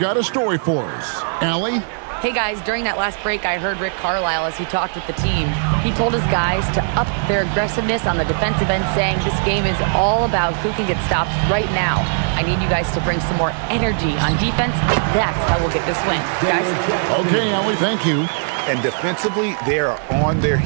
a story for us. Allie? Hey guys, during that last break, I heard Rick Carlisle as he talked with the team. He told his guys to up their aggressiveness on the defensive end, saying this game is all about who can get stops right now. I need you guys to bring some more energy on defense. That's how we'll get this win. Guys? Okay, Allie, thank you. And defensively, they are on their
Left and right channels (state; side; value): silent; left; digital silence